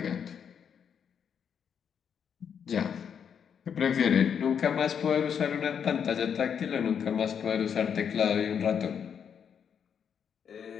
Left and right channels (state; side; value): quieter; right; 7.6 dB